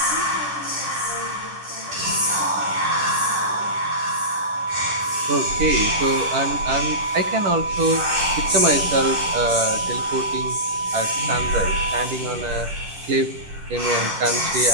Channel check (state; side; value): late; left; 10 ms